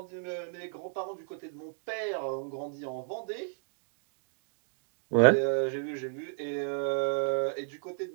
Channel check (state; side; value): silent; left; digital silence